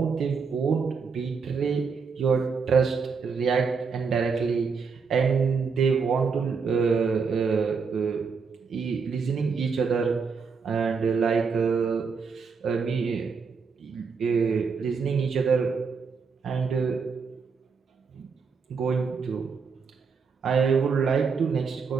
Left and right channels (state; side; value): quieter; left; 5.4 dB